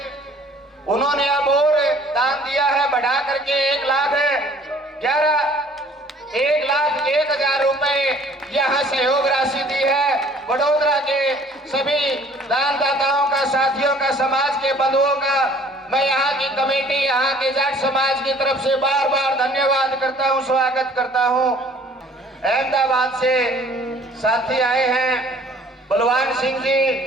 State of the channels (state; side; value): normal; both; correlation 0.54